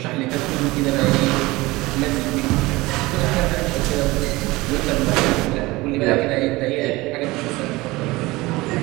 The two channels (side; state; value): left; quieter; 20.9 dB